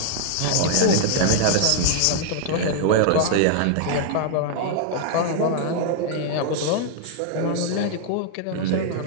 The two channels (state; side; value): different; both; correlation -0.01